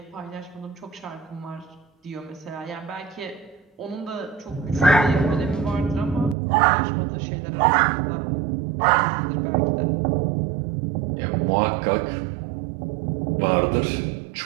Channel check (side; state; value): left; drops out; at 6.4 s